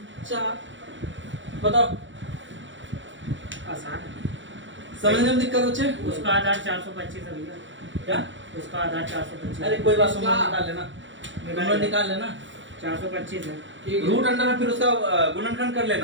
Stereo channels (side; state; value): left; late; 0.55 ms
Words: बताओ, आसान है। समझने में दिक्कत होचे? उसका आधार 425 है भैया। क्या? उसका आधार 425। अरे कोई बात, तुम लोग निकाल लेना, तुम लोग निकाल लेना। 425 है। रूट अंडर में फिर उसका गुणनखंड कर